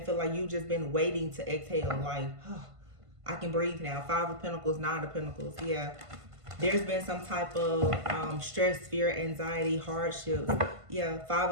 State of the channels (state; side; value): late; left; 1.5 ms